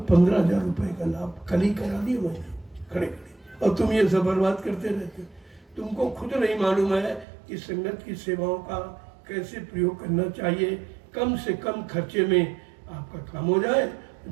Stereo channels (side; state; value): left; drops out; at 7.2 s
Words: 15,000 रुपये का लाभ कल ही करा दिए मैंने खड़े खड़े, और तुम ये सब बर्बाद करते रहते। तुमको खुद नहीं मालूम है कि संगत की सेवाओं का कैसे प्रयोग करना चाहिए। कम से कम खर्चे में आपका काम हो जाए,